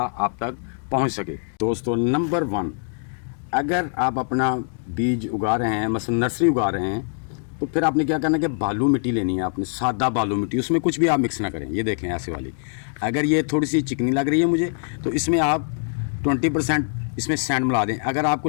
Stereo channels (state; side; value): silent; right; digital silence